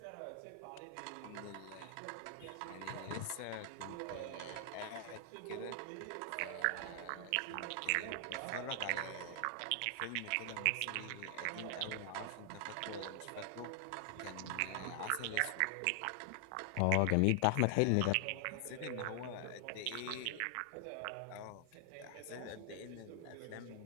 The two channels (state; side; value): different; both; correlation 0.00